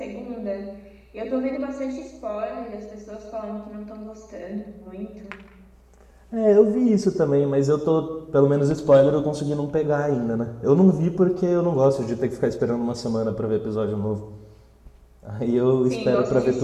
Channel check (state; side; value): identical; both; correlation 1.00